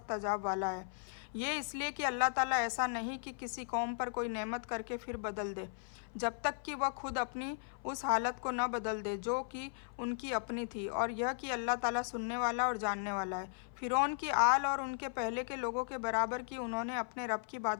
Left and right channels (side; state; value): right; silent; 53 dB below the other